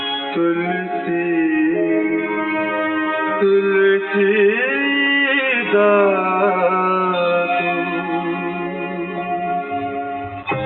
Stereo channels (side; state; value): both; identical; correlation 1.00